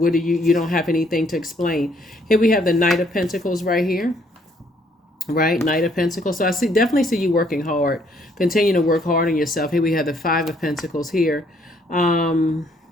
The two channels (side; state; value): both; normal; correlation 0.66